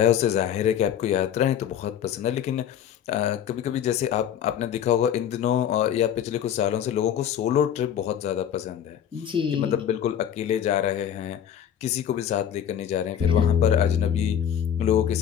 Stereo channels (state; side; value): quieter; right; 9.4 dB